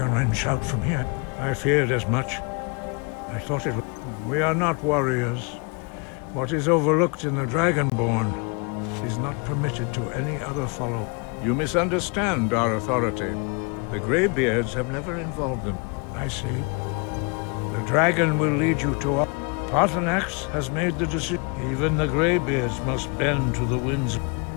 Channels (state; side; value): quieter; right; 34.1 dB